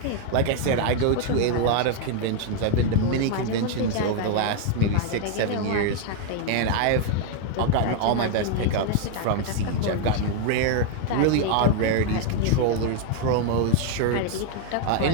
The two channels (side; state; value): both; different; correlation 0.01